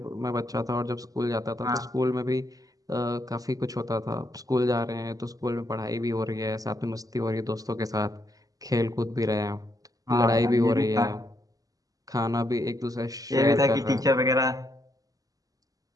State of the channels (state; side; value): late; left; 0.17 ms